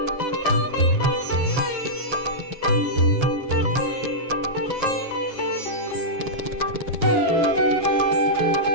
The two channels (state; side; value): late; left; 7.4 ms